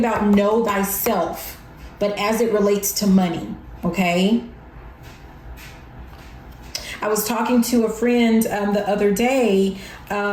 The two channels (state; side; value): identical; both; correlation 1.00